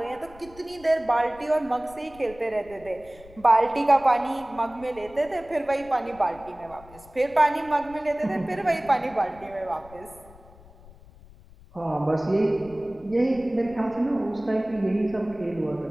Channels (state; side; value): noise; left; rumble, 22 dB below the sound